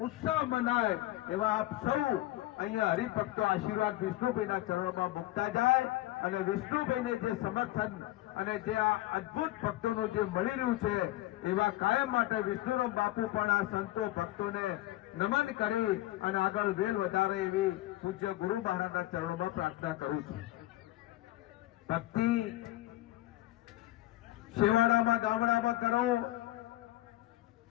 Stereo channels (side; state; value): right; quieter; 16.9 dB